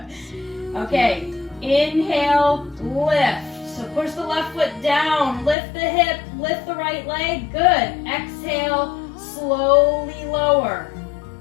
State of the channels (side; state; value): right; drops out; at 5.6 s